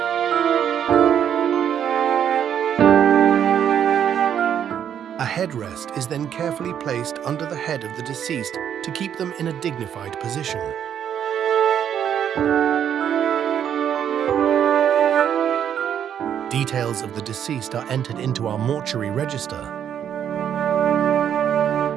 A headrest is then carefully placed under the head of the deceased to keep them in a dignified position. Details of the deceased are entered into our mortuary register.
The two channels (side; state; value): left; quieter; 9.1 dB